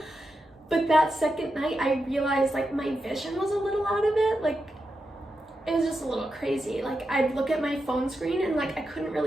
But that second night, I realized like my vision was a little out of it. Like, it was just a little crazy. Like, I'd look at my phone screen and like I couldn't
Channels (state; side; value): normal; both; correlation 0.88